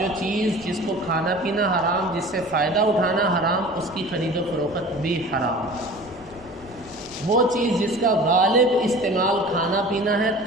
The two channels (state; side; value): noise; right; rumble, 24 dB below the sound